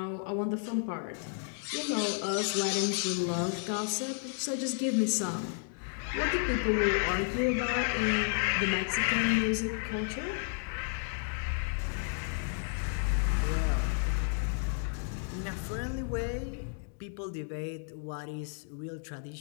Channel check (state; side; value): silent; right; 56 dB below the other